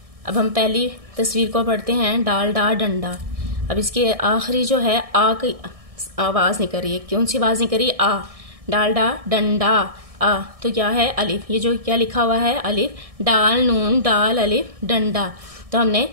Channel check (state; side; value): late; left; 1.6 ms